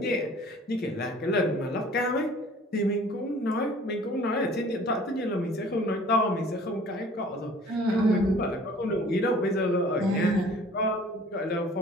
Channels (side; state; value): both; normal; correlation 0.50